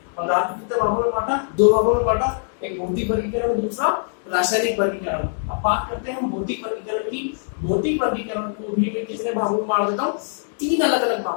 पदार्थ कितने भागों में बांटा, 2 भागों में बांटा, एक भौतिक वर्गीकरण और दूसरा रासायनिक वर्गीकरण। अब बात करते हैं हम भौतिक वर्गीकरण की। भौतिक वर्गीकरण को भी मैं कितने भागों में बांट देता हूँ, 3 अलग अलग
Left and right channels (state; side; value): silent; right; digital silence